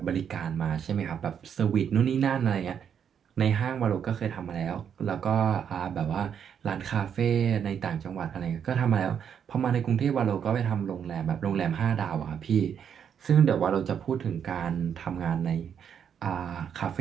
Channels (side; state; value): left; quieter; 8.1 dB